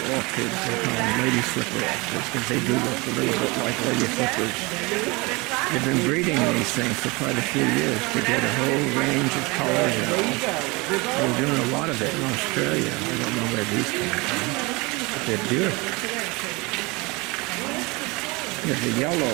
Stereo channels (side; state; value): left; quieter; 25.6 dB